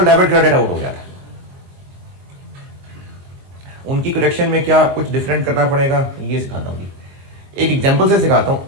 डेबिट क्रेडिट आउट हो गया था, उनकी करेक्शन में क्या कुछ डिफरेंट करना पड़ेगा ये सिखाता हूँ। एक एग्जांपल से सिखाता हूँ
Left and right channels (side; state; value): left; late; 22 ms